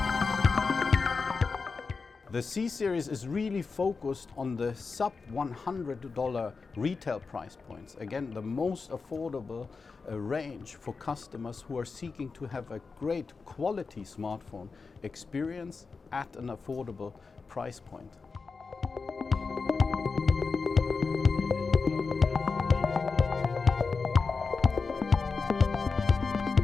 The C series is really focused on the sub $100 retail price points. Again, the most affordable range for customers who are seeking to have a great quality smartphone experience at an affordable price point.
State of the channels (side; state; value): right; quieter; 4.6 dB